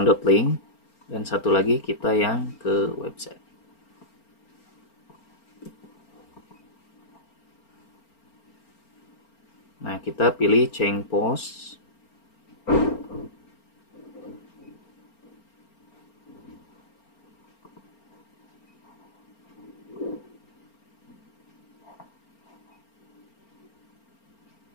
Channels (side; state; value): right; late; 4.4 ms